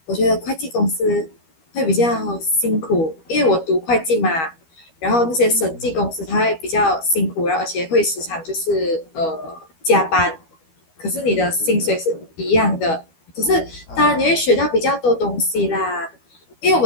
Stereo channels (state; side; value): late; right; 12 ms